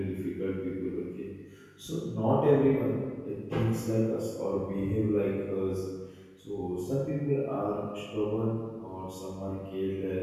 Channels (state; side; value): identical; both; correlation 1.00